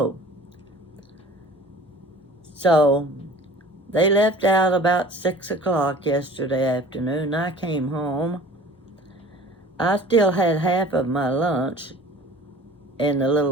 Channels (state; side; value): normal; both; correlation 0.44